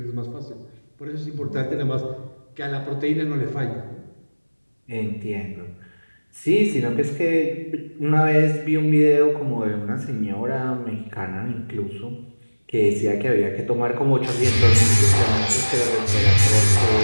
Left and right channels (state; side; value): inverted; both; correlation -1.00